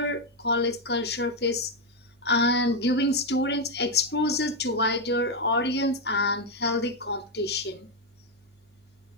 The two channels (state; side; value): normal; both; correlation 0.03